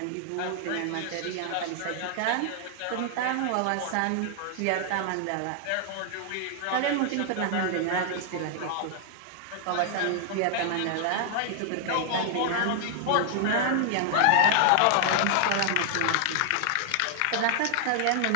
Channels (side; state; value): both; different; correlation -0.01